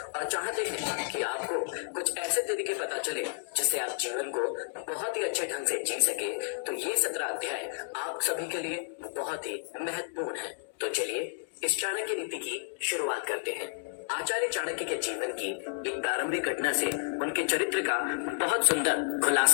चाहते हैं कि आपको कुछ ऐसे तरीके पता चले जिससे आप जीवन को बहुत ही अच्छे ढंग से जी सके, तो ये 17 अध्याय आप सभी के लिए बहुत ही महत्वपूर्ण है। तो चलिए इस चाणक्य नीति की शुरुआत करते हैं। आचार्य चाणक्य के जीवन की एक प्रारंभिक घटना से उनके चरित्र का बहुत सुंदर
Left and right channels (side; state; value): right; silent; digital silence